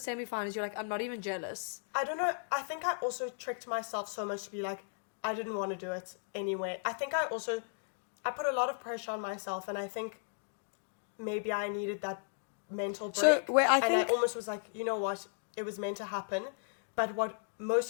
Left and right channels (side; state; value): right; silent; digital silence